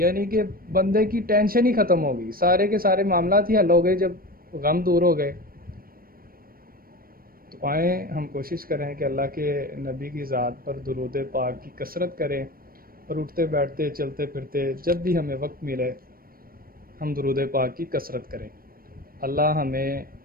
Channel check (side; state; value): left; late; 0.43 ms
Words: کہ بندے کی ٹینشن ہی ختم ہوگی، سارے کے سارے معاملات ہی حل ہو گئے جب غم دور ہو گئے۔ تو آئیں ہم کوشش کریں کہ اللہ کے نبی کی ذات پر درود پاک کی کثرت کریں، اور اٹھتے بیٹھتے چلتے پھرتے جب بھی ہمیں وقت ملے ہم درود پاک کی کثرت کریں۔ اللہ ہمیں